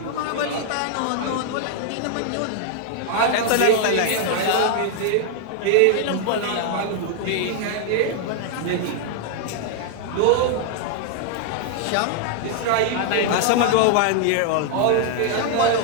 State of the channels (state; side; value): different; both; correlation 0.00